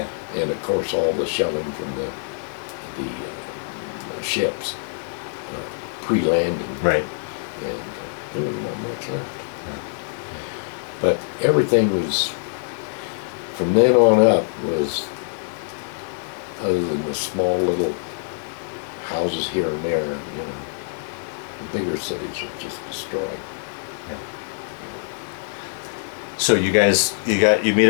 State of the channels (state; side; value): silent; right; digital silence